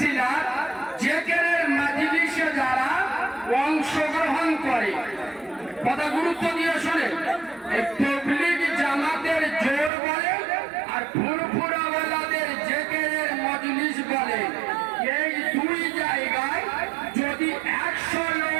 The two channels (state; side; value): drops out; left; at 9.9 s